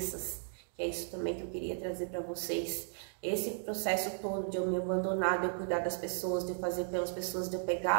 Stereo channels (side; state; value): left; silent; digital silence